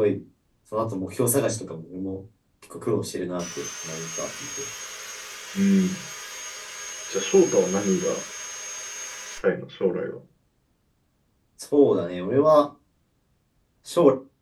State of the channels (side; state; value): both; identical; correlation 1.00